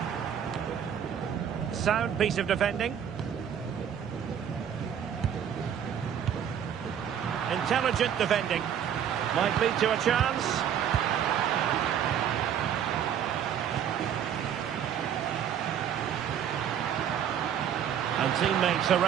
Sound piece of defending. Intelligent defending. Might lead to a chance. And teammates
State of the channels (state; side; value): quieter; left; 9.0 dB